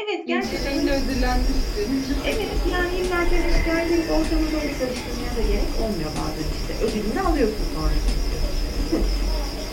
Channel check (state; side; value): identical; both; correlation 1.00